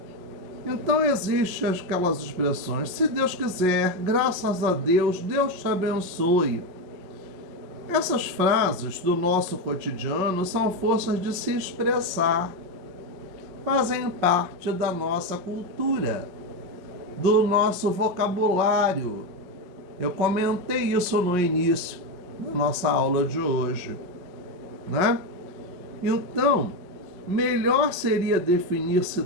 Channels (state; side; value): late; left; 5.5 ms